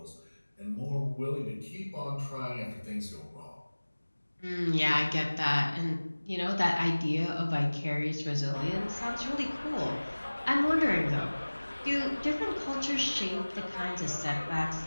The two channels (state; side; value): inverted; both; correlation -1.00